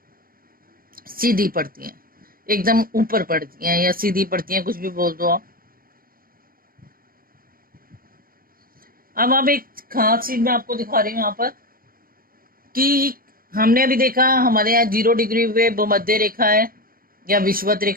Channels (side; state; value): left; late; 0.42 ms